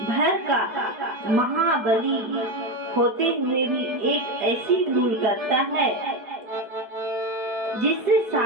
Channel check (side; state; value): left; late; 4.6 ms